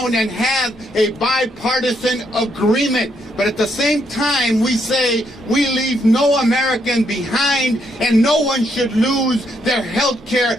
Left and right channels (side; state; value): both; normal; correlation 0.75